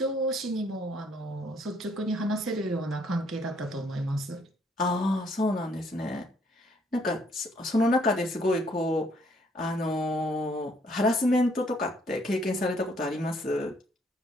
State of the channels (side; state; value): both; normal; correlation 0.66